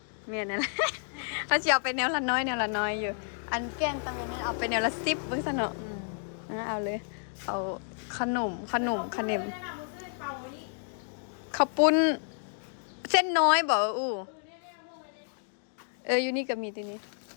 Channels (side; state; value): right; silent; 57 dB below the other